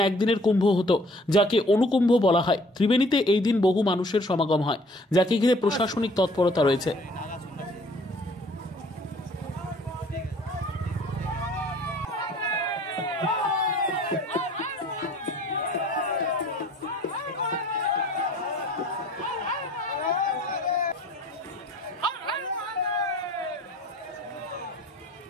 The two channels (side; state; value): both; normal; correlation 0.54